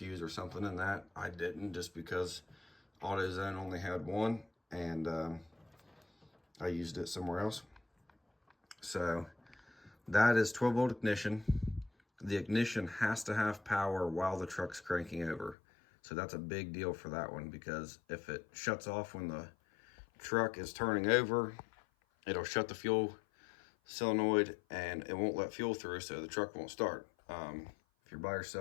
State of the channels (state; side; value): drops out; right; at 15.6 s